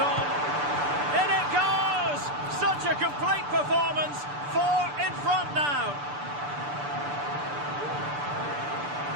In it goes! Such a complete performance. 4 in front now.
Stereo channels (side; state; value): left; late; 6.9 ms